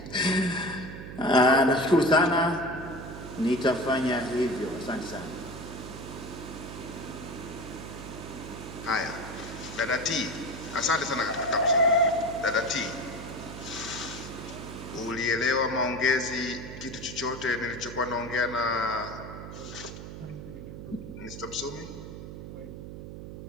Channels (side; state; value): right; noise; hum, 10 dB below the sound